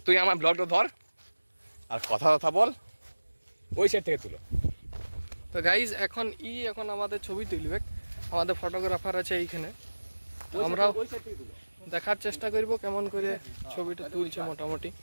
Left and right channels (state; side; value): inverted; both; correlation -1.00